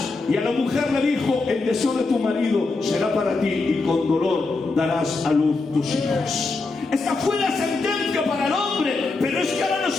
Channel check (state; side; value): quieter; right; 3.7 dB